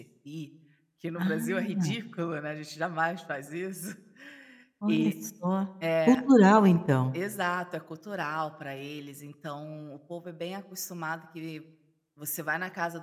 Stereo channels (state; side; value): identical; both; correlation 1.00